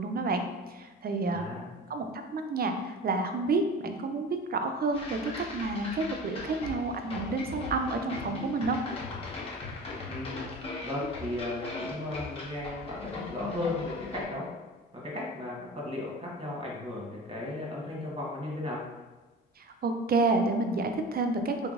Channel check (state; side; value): normal; both; correlation 0.36